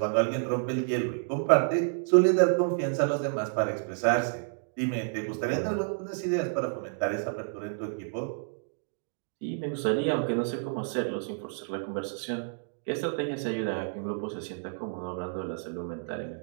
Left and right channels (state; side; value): silent; left; digital silence